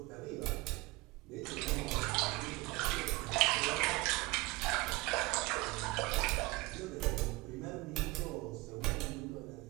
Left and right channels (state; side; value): quieter; left; 22.2 dB